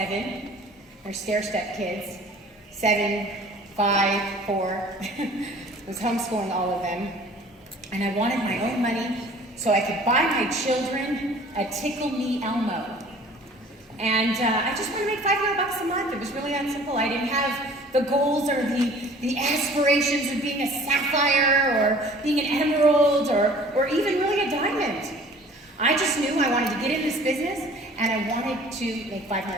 They're stair-step kids. 7, 5, 4. I was homeschooling all of them. And I wanted my own money so I could buy my children a Tickle Me Elmo. And I just wanted to make $500 a month. It was really that simple. I didn't have the goals or the aspirations of being a sapphire or being an emerald or even really a diamond. I just knew I wanted to get in this business and I wanted to make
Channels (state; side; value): normal; both; correlation 0.49